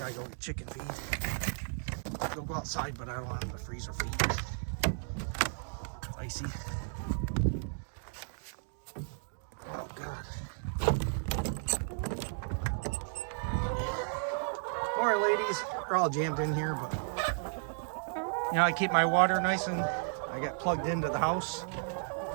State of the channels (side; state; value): left; silent; digital silence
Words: go get chicken feed. They'll go outside, but I don't want them to freeze their feet. It's icy. Oh God. Alright ladies, we're all jammed in here, but you know, I keep my water nice and I got plugged into the house.